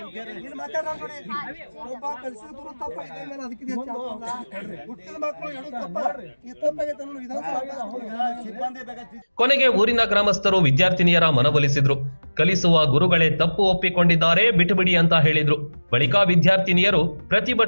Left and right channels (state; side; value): inverted; both; correlation -1.00